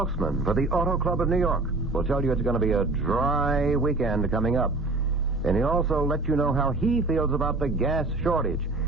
for the Auto Club of New York will tell you it's going to be a dry weekend coming up. And he'll also let you know how he feels about the gas shortage.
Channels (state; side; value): quieter; left; 3.3 dB